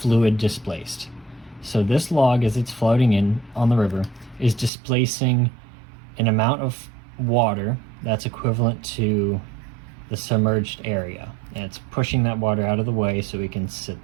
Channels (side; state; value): left; drops out; at 4.7 s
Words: displaced. So this log, as it's floating in on the river, is displacing an amount of water that's equivalent to the submerged area, and it's pushing that water out of the way so we can